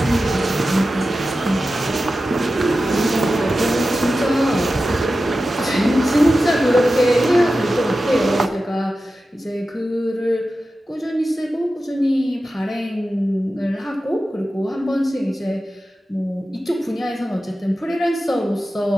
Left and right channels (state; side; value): normal; both; correlation 0.93